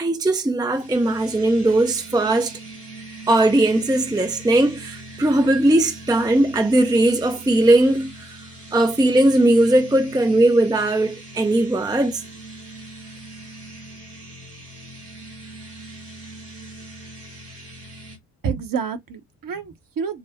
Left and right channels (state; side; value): normal; both; correlation 0.83